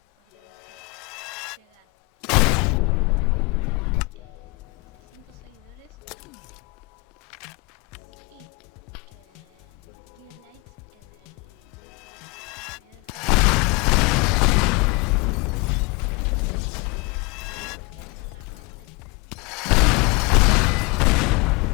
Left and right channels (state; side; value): quieter; right; 27.5 dB